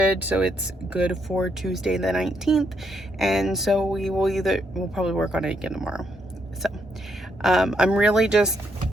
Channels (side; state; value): both; normal; correlation 0.76